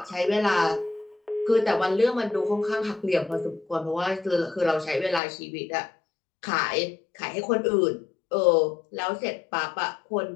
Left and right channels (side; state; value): right; drops out; at 5.2 s